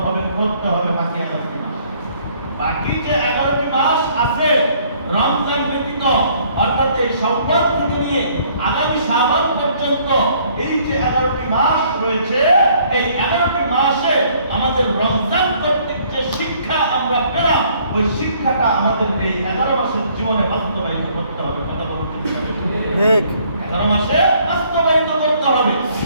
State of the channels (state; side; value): inverted; both; correlation -0.62